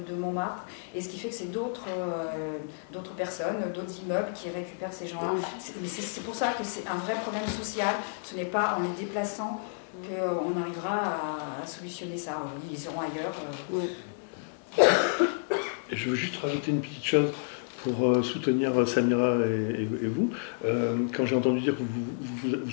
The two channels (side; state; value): right; silent; 58 dB below the other